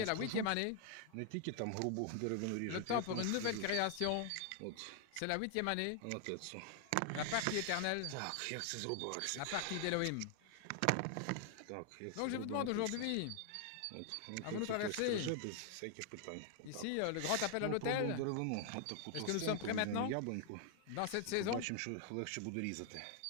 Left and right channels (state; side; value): different; both; correlation 0.00